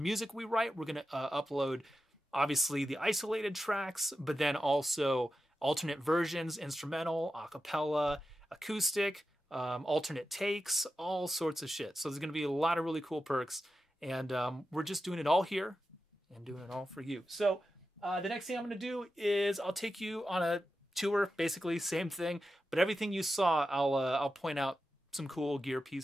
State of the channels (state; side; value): normal; both; correlation 0.91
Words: we write, we're going to upload, obviously, the isolated tracks, but then also alternate versions, instrumental, a cappella, acoustic, alternate takes, all sorts of shit. So there's going to be a lot of really cool perks, and we're just doing it all here and doing it all for you. So the next thing I'm going to do is I'll take you on a tour, basically same thing, but everything you saw, I'll point out some cool gear